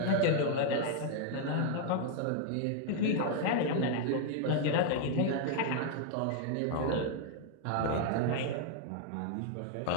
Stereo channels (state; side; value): different; both; correlation 0.00